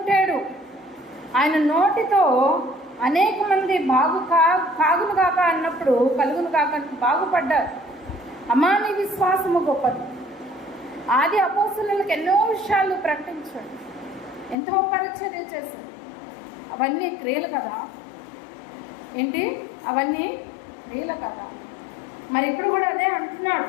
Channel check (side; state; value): right; drops out; at 14.6 s